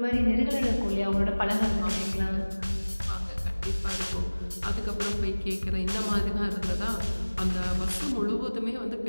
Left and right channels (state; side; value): inverted; both; correlation -1.00